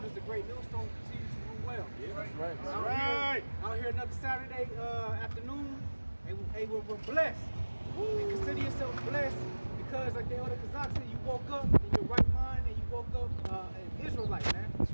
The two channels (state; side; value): inverted; both; correlation -1.00